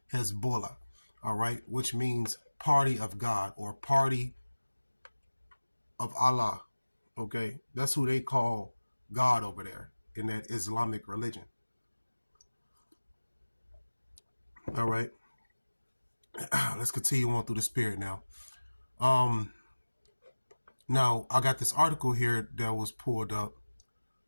Hezbollah. All right, which means party of God or party of Allah. Okay, that's who they call God over there in that Islamic religion. All right, let's continue on through the spirit now. Now I got this article here that was pulled up.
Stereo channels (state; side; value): inverted; both; correlation -1.00